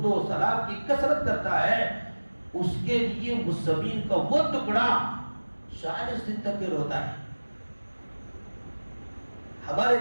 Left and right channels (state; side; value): inverted; both; correlation -1.00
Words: و سلام کی کثرت کرتا ہے، اس کے لیے اس زمین کا وہ ٹکڑا 40 دن تک روتا ہے۔ ہمارے